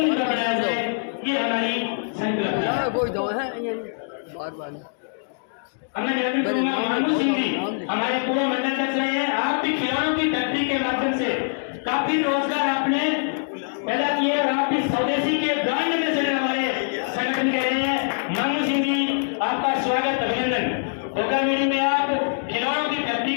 बनाया जाए, ये हमारी संकल्प है। हमने निवेदन करूंगा मानू सिंह जी हमारे पूर्व मंडलाध्यक्ष रहे हैं। आप भी खिलौनों की फैक्ट्री के माध्यम से काफी रोजगार आपने पैदा किए और आप भी स्वदेशी के ब्रांड एम्बेसडर हमारे संगठन के रहे हैं। मानू सिंह जी आपका स्वागत अभिनंदन। गोगामेड़ी में आप खिलौनों की फैक्ट्री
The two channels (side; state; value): right; silent; digital silence